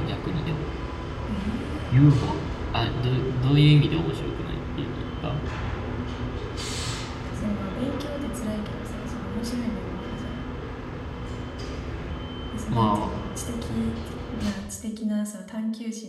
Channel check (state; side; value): identical; both; correlation 1.00